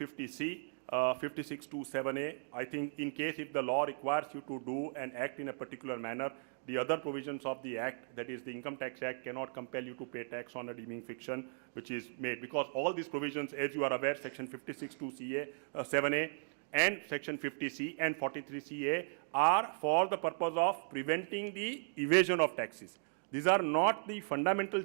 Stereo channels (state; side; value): silent; left; digital silence